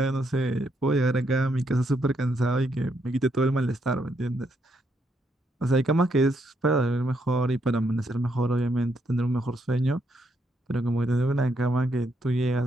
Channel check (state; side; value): normal; both; correlation 0.77